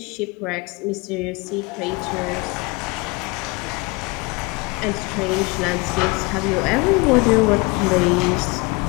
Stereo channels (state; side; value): quieter; right; 26.3 dB